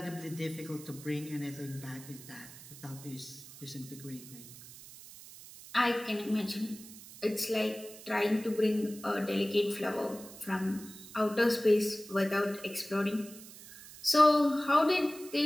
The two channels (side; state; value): right; noise; hiss, 17 dB below the sound